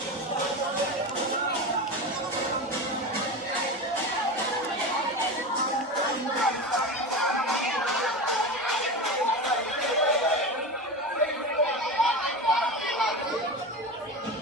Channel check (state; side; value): normal; both; correlation 0.25